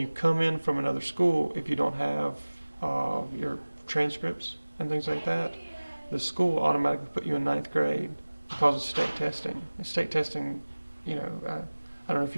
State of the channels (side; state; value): both; inverted; correlation -1.00